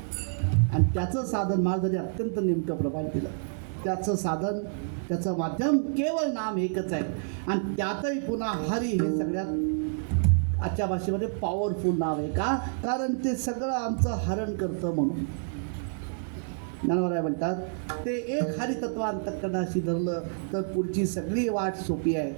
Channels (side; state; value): left; silent; digital silence